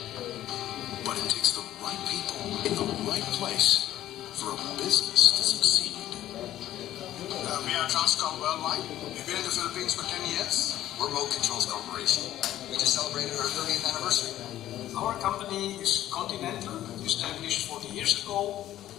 But it takes the right people in the right place for a business to succeed. We are Transcom Worldwide. We've been in the Philippines for 10 years. We're Remote Controls Corporation. We just celebrated our 30th anniversary. Our company is Continental, established 40 years ago.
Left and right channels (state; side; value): quieter; right; 13.2 dB